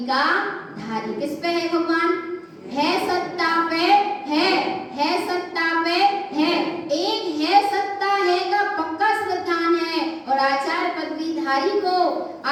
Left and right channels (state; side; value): identical; both; correlation 1.00